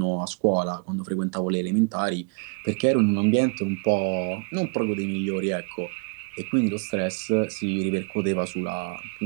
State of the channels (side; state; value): left; quieter; 34.6 dB